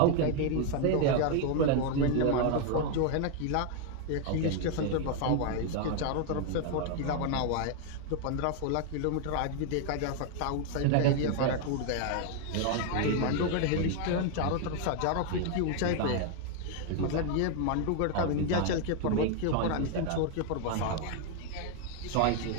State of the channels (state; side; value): different; both; correlation 0.00